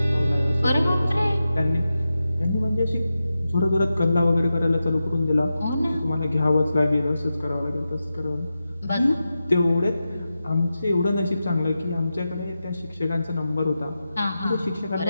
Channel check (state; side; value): inverted; both; correlation -0.91